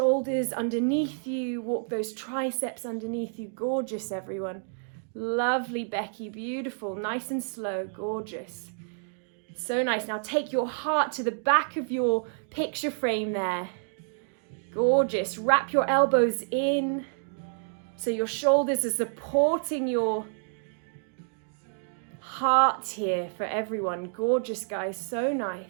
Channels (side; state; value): left; silent; digital silence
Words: underneath you, walk those triceps underneath you. Gorgeous, everyone. Lovely, Becky. Beautiful. Nice and slow. Gorgeous. So nice. Now take your heart to the back of your picture frame there. Gorgeous. Wrap your elbows in so your shoulders are supporting your heart here for everyone. Gorgeous, guys. So